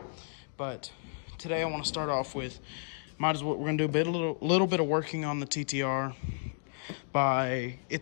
But today I want to start off with, we're gonna do a little bit of working on the TTR.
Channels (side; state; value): right; silent; digital silence